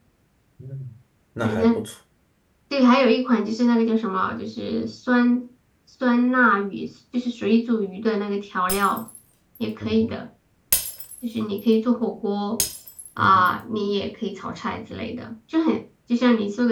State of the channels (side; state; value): both; identical; correlation 1.00